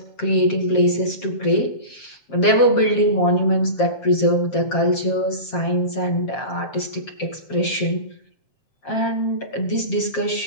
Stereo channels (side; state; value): right; late; 7.5 ms